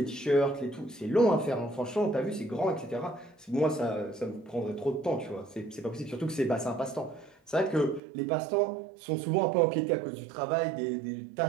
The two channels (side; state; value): left; drops out; at 8.0 s